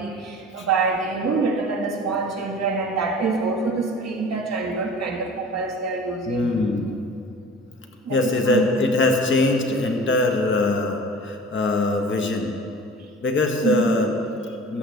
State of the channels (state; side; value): normal; both; correlation 0.41